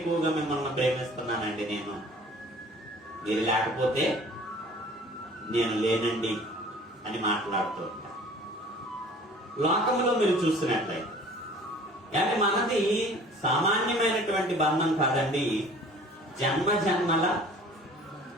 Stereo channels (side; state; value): both; normal; correlation 0.49